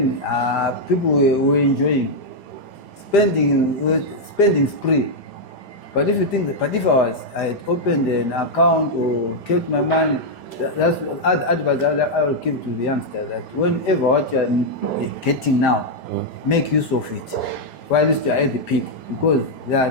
people were enjoying spending spree. But if you think that, but if I had opened an account or kept my money, that's advice I will give to the youngsters, that whenever what you are getting now, make use of it while you are at the peak. Because there are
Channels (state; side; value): late; right; 5.0 ms